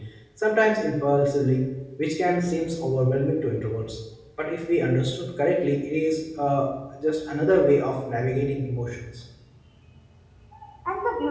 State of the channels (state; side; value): identical; both; correlation 1.00